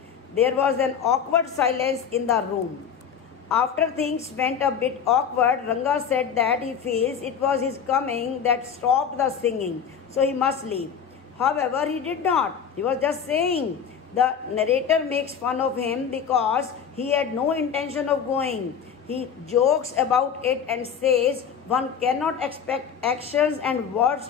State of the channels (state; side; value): quieter; right; 7.3 dB